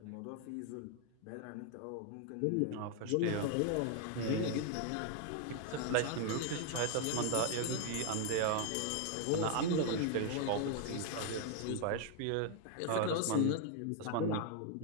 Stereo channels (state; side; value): different; both; correlation 0.00